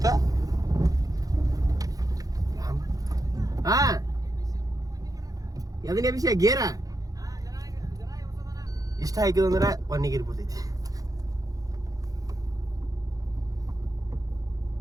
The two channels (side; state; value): left; late; 0.17 ms